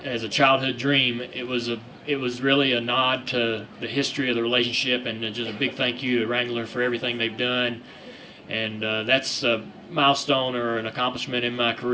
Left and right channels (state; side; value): identical; both; correlation 1.00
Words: a childhood dream, it was really a nod to the history of the relationship, and just a big thank you to Wrangler for everything they've done. And that's a milestone or an accomplishment in my